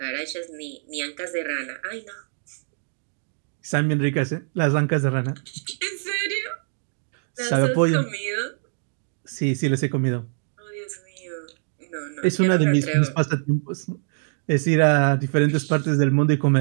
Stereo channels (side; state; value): left; silent; digital silence